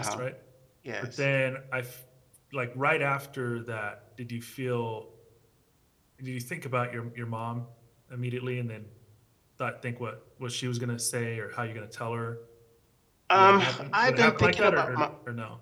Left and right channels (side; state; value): both; identical; correlation 1.00